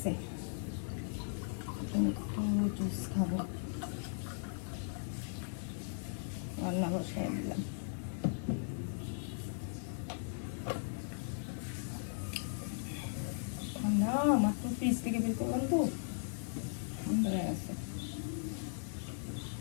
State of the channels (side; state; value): right; silent; digital silence